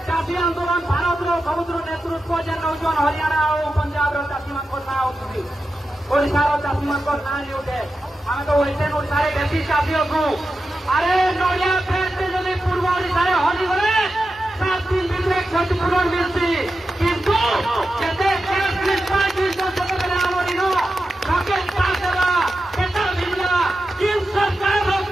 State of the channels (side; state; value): both; normal; correlation 0.91